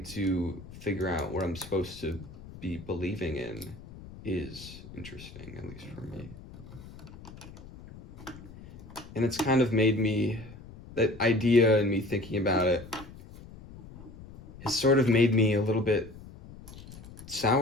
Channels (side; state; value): left; noise; rumble, 17 dB below the sound